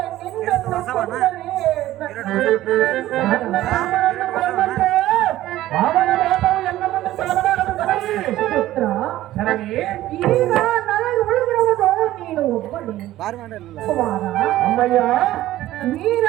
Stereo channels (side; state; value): left; quieter; 14.8 dB